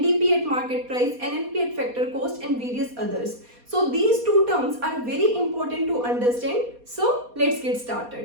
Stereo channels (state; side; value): late; left; 4.2 ms